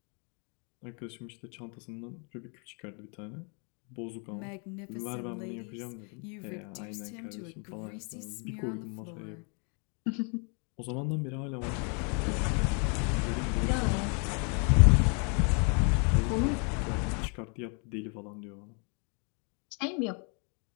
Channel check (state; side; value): quieter; right; 37.4 dB